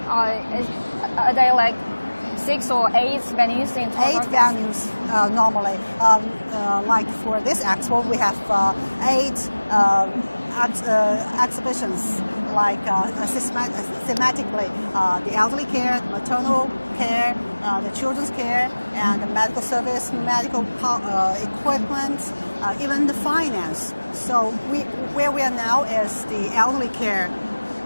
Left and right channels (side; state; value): both; inverted; correlation -1.00